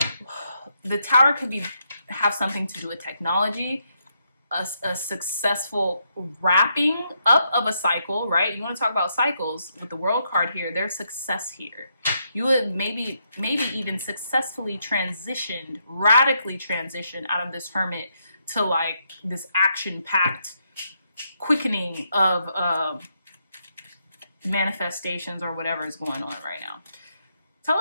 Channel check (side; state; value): both; inverted; correlation -0.78